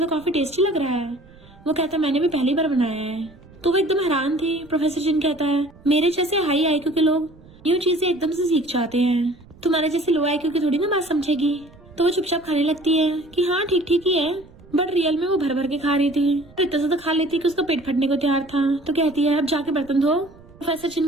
तो काफी टेस्टी लग रहा है। वो कहता मैंने भी पहली बार बनाया है। तो वो एकदम हैरान थी। प्रोफेसर जिन कहता है मेरे जैसे हाई आईक्यू के लोग यूँ चीजें एकदम से सीख जाते हैं, तुम्हारे जैसे लो आईक्यू की थोड़ी ना बात समझेगी। तो वो चुपचाप खाने लगती है कि हाँ ठीक ठीक ही है, बट रियल में वो भर भर के खा रही थी। तो इतना ज्यादा खा लेती कि उसका पेट फटने को तैयार था। तो कहती है अब जाके बर्तन धो। प्रोफेसर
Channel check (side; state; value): right; noise; rumble, 24 dB below the sound